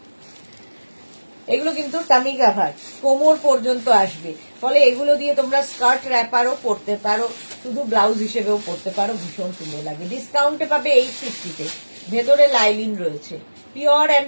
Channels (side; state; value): both; inverted; correlation -1.00